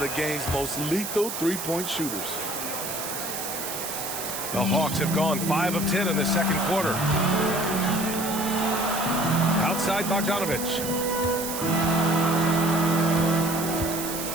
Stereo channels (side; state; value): right; noise; hiss, 6 dB below the sound